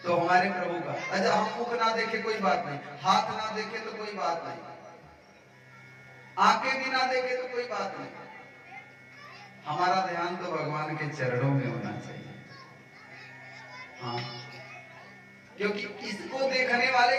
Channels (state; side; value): identical; both; correlation 1.00